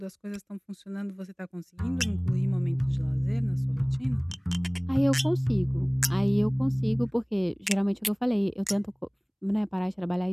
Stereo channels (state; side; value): identical; both; correlation 1.00